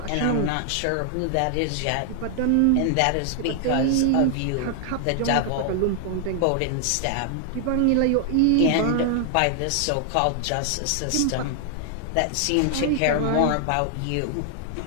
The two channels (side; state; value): both; different; correlation 0.00